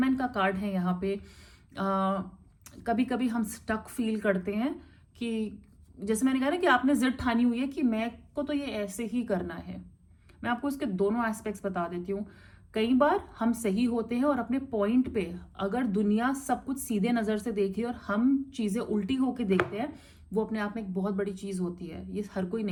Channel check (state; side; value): identical; both; correlation 1.00